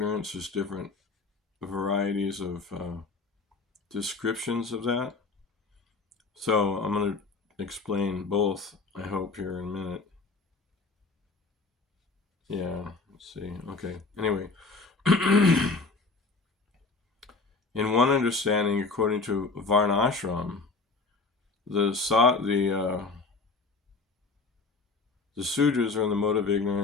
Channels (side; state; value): right; quieter; 3.9 dB